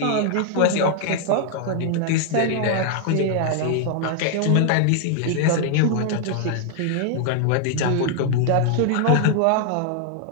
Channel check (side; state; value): both; different; correlation 0.00